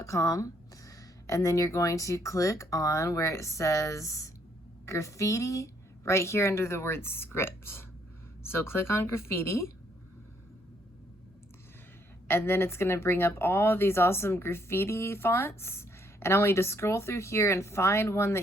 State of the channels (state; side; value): normal; both; correlation 0.69